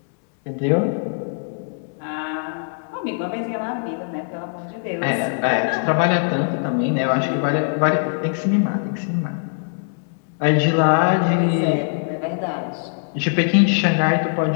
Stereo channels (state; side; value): silent; right; digital silence